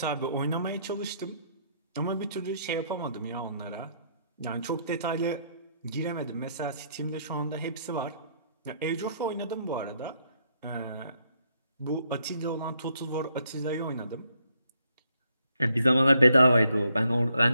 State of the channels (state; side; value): inverted; both; correlation -0.72